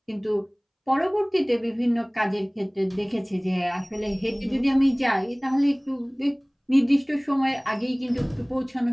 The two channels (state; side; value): identical; both; correlation 1.00